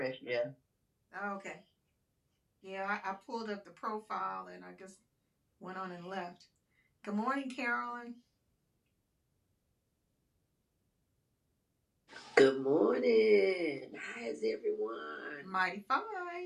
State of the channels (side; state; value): both; identical; correlation 1.00